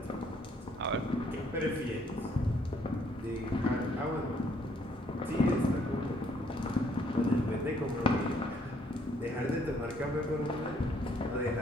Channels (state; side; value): normal; both; correlation 0.66